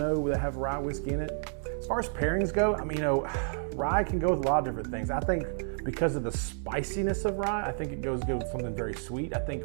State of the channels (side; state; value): left; silent; digital silence